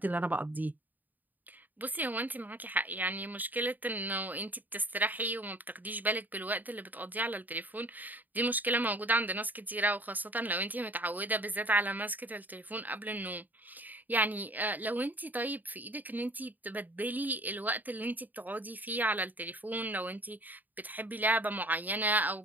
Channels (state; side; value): late; left; 0.085 ms